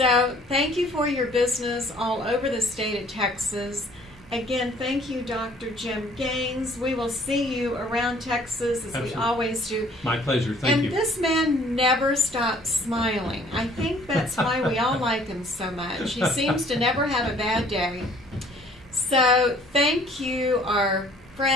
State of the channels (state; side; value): normal; both; correlation 0.57